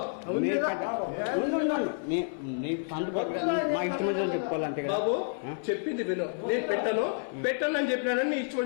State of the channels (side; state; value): right; silent; 58 dB below the other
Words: మా ఇష్టం చెప్పుకోవాలంటే బాబు చెప్పింది విను. నేను పెట్టను పెట్టను అని చెప్పినానని నీ